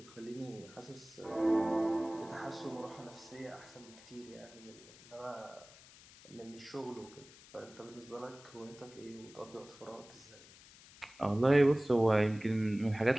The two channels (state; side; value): noise; left; hiss, 21 dB below the sound